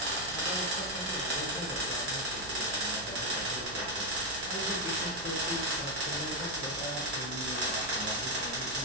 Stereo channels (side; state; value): right; noise; hum, 16 dB below the sound